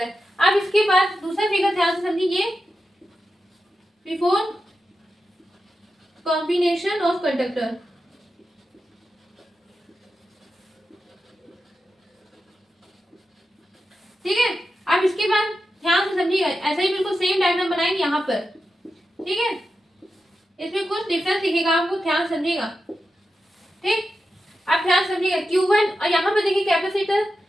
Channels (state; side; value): normal; both; correlation 0.90